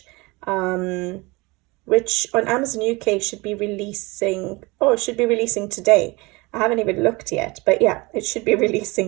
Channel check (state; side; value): quieter; left; 24.6 dB